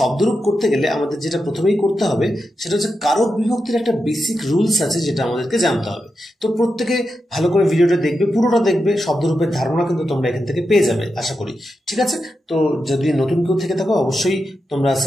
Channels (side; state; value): both; normal; correlation 0.88